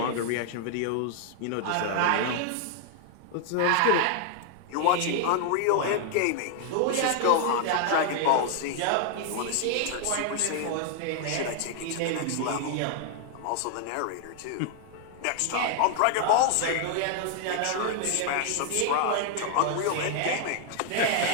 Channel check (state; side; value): different; both; correlation 0.00